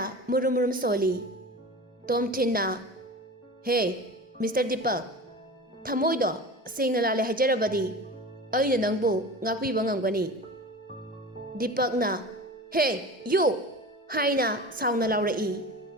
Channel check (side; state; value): both; normal; correlation 0.34